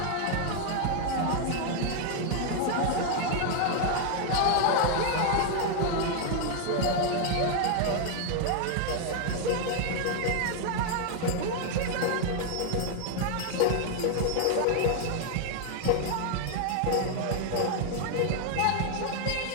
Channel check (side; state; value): both; different; correlation 0.00